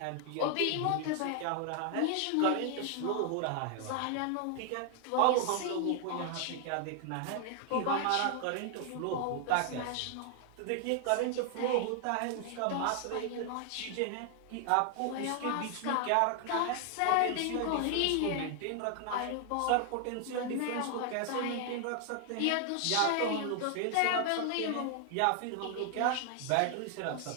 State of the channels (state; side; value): different; both; correlation 0.00